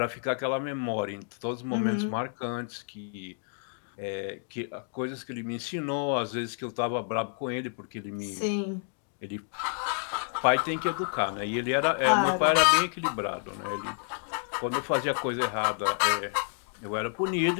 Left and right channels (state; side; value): silent; right; 58 dB below the other